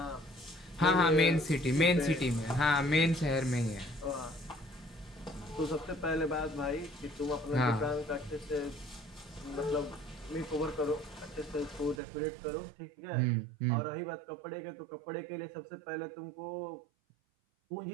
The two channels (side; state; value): left; drops out; at 12.0 s